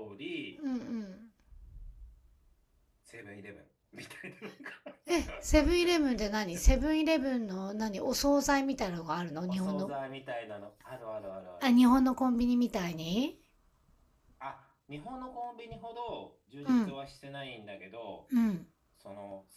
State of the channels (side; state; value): both; identical; correlation 1.00